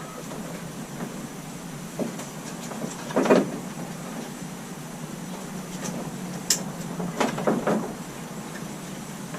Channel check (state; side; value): noise; left; hum, 30 dB below the sound